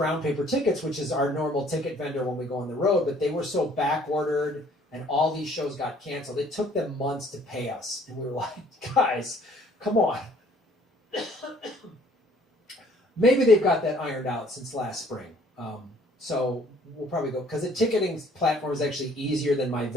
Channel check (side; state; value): both; normal; correlation 0.58